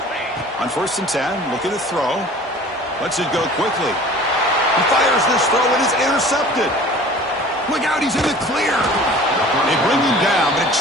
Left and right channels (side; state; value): both; normal; correlation 0.45